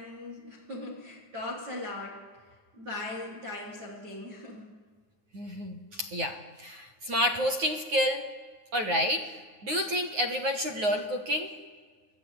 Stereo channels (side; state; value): left; late; 9.5 ms